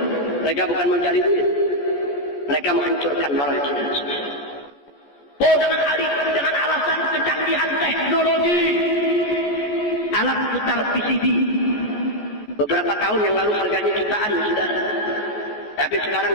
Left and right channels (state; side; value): late; right; 14 ms